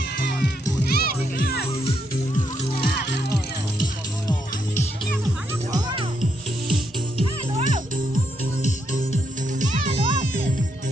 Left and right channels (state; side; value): normal; both; correlation 0.78